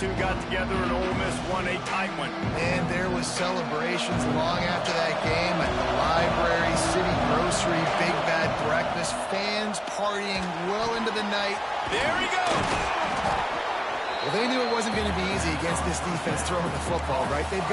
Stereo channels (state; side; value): identical; both; correlation 1.00